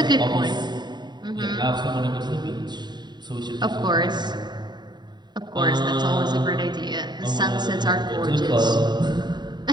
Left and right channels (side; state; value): left; late; 0.21 ms